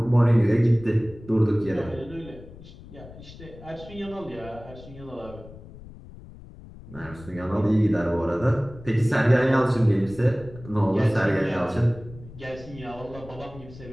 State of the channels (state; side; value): noise; left; rumble, 17 dB below the sound